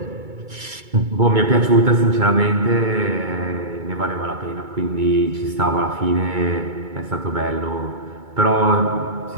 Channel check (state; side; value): late; left; 2.2 ms